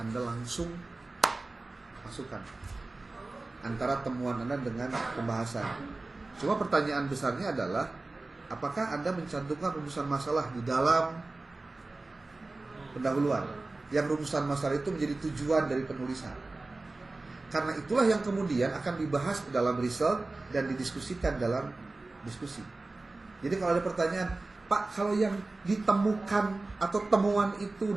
langsung masukkan antara temuan Anda dengan pembahasan. Cuma pertanyaan besarnya adalah, apakah Anda mencantumkan rumusan masalah di dalam pendahuluan? Yang rumusan masalah itu menjadi tujuan dari penulisan. Karena itulah yang kemudian akan dibahas dalam result dan didiskusikan dalam diskusi. Jadi kalau ada pertanyaan, Pak, kalau yang ditemukan atau temuan itu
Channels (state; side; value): quieter; left; 3.2 dB